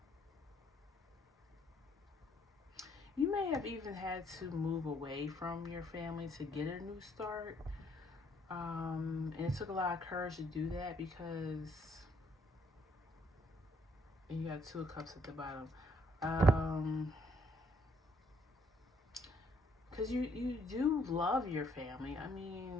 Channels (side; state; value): both; normal; correlation 0.67